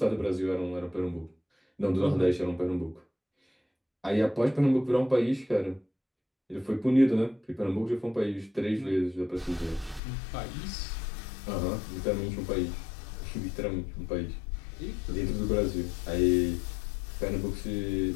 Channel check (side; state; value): right; drops out; at 10.0 s